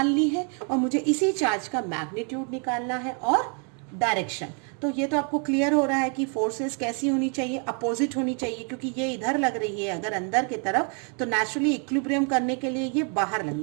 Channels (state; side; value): quieter; left; 39.4 dB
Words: ली है और मुझे इसी चार्ज का मैग्नीट्यूड निकालना है और डायरेक्शन। तो ये तो आपको क्लियर हो रहा है कि फोर्सेस कैसी होनी चाहिए, अपोजिट होनी चाहिए, क्योंकि ये इधर लग रही है अगर अंदर की तरफ, तो नेचुरली इक्विलिब्रियम करने के लिए ये बाहर